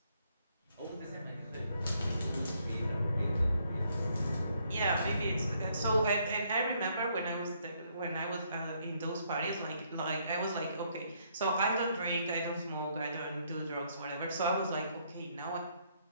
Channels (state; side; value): inverted; both; correlation -0.70